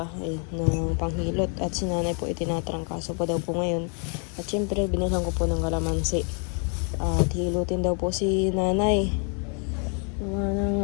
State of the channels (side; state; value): right; quieter; 39.9 dB